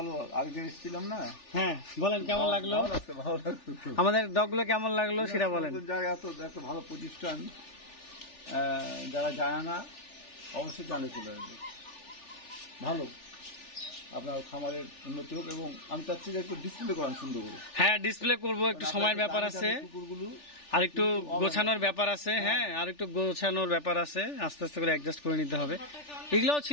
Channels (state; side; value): late; right; 3.4 ms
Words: আরেকদিন এসেছিলাম না, হ্যাঁ, বলেন কেমন লাগলো, ভালো লাগছে, ভালো লাগছে খুব। আমাদের ডগগুলো কেমন লাগলো সেটা বলেন। নতুন জায়গা, এত একটা ভালো প্রতিষ্ঠান, যারা যায় না অবশ্যই জানে চলে আসবে। ভালো, আপনার খামারের উন্নতি হোক, এবং আমি চাচ্ছি যে একটু ডিসপ্লে করান সুন্দর করে। হ্যাঁ, ডিসপ্লে করবো, একটু সময়ের ব্যাপার আছে, কুকুরগুলো আর একটু গোছানোর ব্যাপার আছে। হ্যাঁ, আর একটু গোছানোর ব্যাপার আছে, আস্তে আস্তে করে অ্যাডজাস্ট করে নিতে হবে। এগুলোও